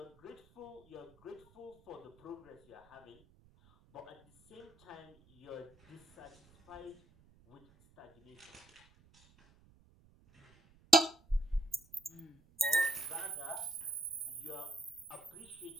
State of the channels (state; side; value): noise; right; rumble, 28 dB below the sound